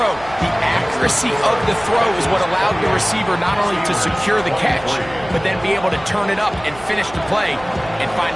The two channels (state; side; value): noise; right; hum, 18 dB below the sound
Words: The accuracy of the throw is what allowed the receiver not only to secure the catch, but then be able to turn it up and finish the play and find